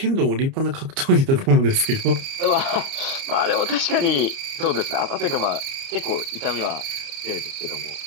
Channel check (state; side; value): late; left; 30 ms